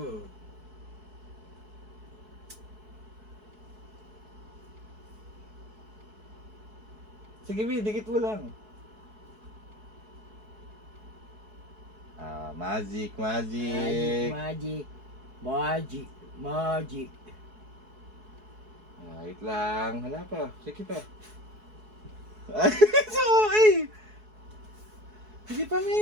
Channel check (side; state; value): left; late; 4.7 ms